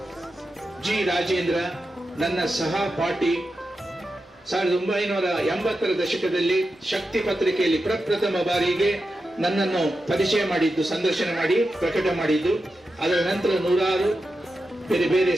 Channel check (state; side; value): normal; both; correlation 0.90